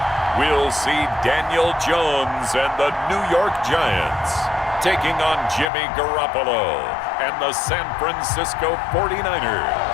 We'll see Daniel Jones and the New York Giants taking on Jimmy Garoppolo and the San Francisco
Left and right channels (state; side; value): drops out; right; at 5.7 s